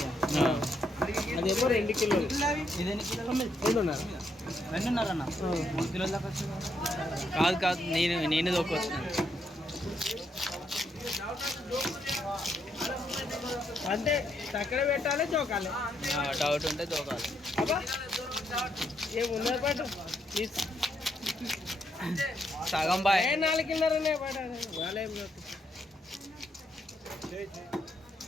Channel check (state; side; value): normal; both; correlation 0.77